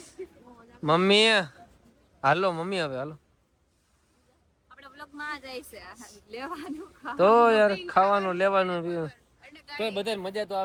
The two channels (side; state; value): both; identical; correlation 1.00